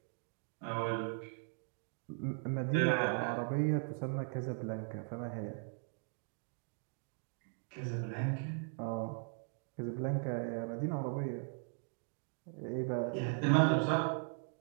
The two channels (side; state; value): left; silent; 52 dB below the other